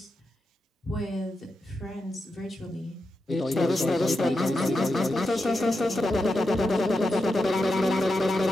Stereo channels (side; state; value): both; normal; correlation 0.88